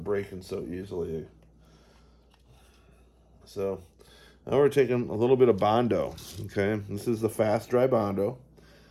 breaking so easily. So now we're taking a little bit of Bondo. Okay, this is the fast dry Bondo.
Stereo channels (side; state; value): both; identical; correlation 1.00